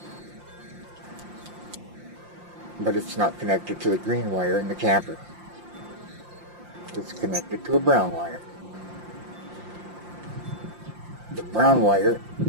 but it's not connected to the green wire in the camper. It's connected to a brown wire. The brown wire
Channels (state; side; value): late; left; 5.7 ms